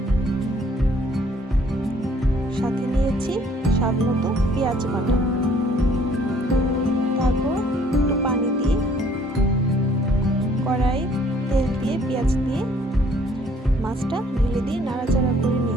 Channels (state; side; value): normal; both; correlation 0.60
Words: সাথে নিয়েছি স্বাদ মতো পেঁয়াজ বাটা। তারপর একটু পানি দিয়ে কড়াই তেল দিয়ে পেঁয়াজ দিয়ে মাছটা ঢেলে দিয়ে নাড়াচাড়া করে